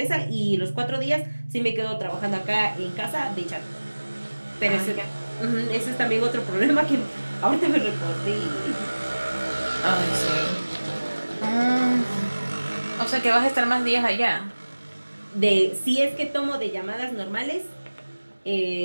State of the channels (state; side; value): inverted; both; correlation -1.00